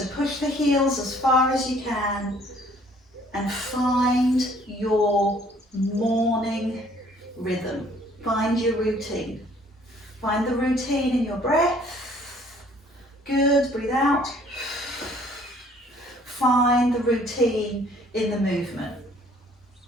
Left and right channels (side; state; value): both; normal; correlation 0.58